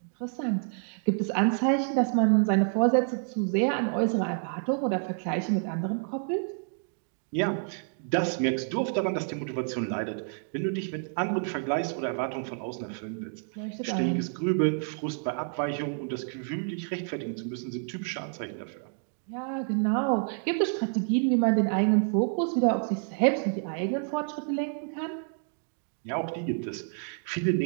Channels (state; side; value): silent; left; 57 dB below the other